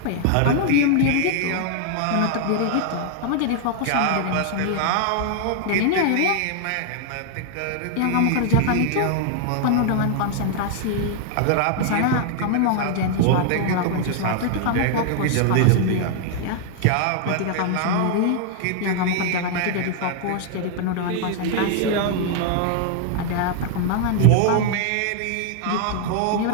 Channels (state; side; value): different; both; correlation 0.00